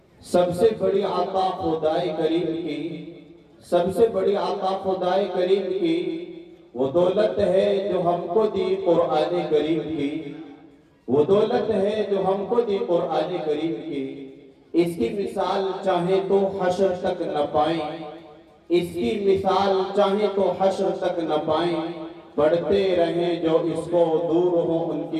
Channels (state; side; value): identical; both; correlation 1.00